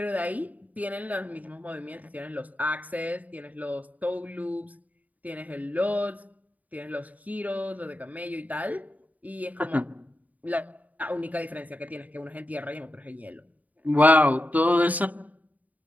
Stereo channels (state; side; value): late; left; 0.075 ms